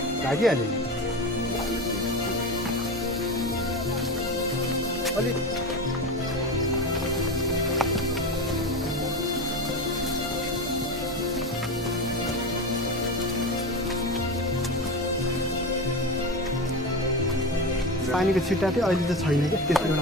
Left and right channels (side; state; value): both; normal; correlation 0.22